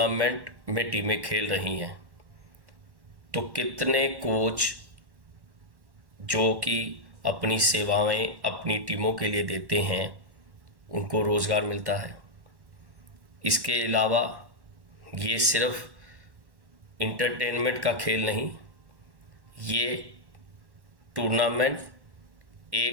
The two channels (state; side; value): late; left; 1.1 ms